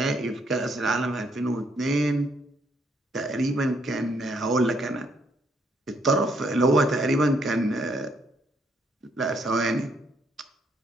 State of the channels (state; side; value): normal; both; correlation 0.71